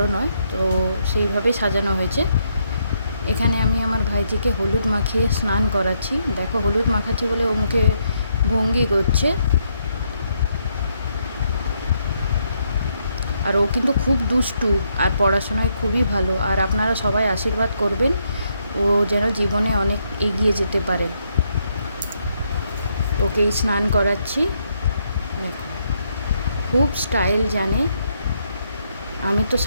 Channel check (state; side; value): inverted; both; correlation -0.76